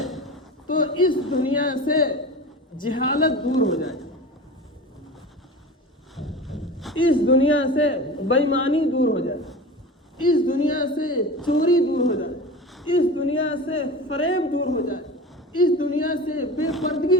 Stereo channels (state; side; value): normal; both; correlation 0.33